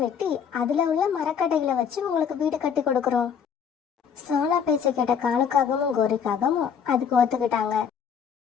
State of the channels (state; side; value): quieter; right; 7.2 dB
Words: வெட்டி அதுல உள்ள மரக்கட்டைகளை வச்சு உங்களுக்கு வீடு கட்டி கொடுக்கறோம். சோனா பேச்ச கேட்ட காலுக்காகவும் கோரிக்காகவும் அதுக்கு ஒத்துக்கிட்டாங்க.